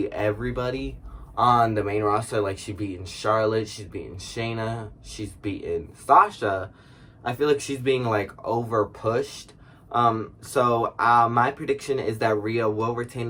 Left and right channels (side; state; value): both; identical; correlation 1.00